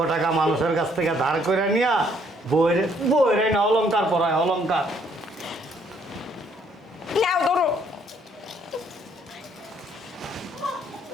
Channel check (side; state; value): both; normal; correlation 0.66